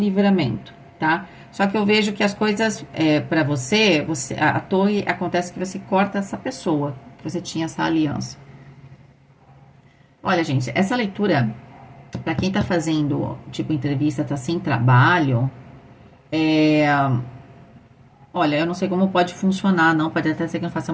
tá? Só que eu vejo que as coisas, para você, à toa acontece que você corta essa pessoa, que você tinha essa aliança. Olha, gente, essa leitura, para quem tá fazendo, tipo, entrevista, tá sem trabalho, olha, eu não sei como pode funcionar, não, pode até ser que não faça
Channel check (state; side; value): identical; both; correlation 1.00